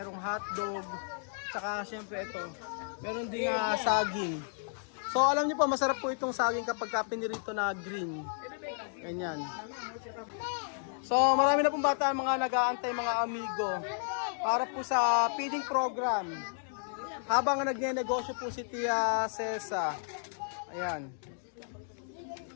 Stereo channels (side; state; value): right; silent; digital silence